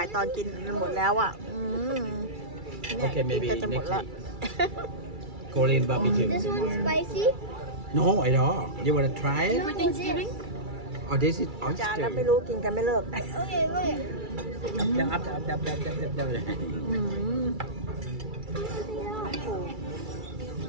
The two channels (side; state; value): left; late; 2.3 ms